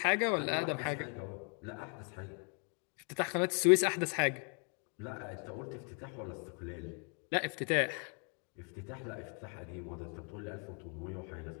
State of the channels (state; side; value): quieter; right; 38.9 dB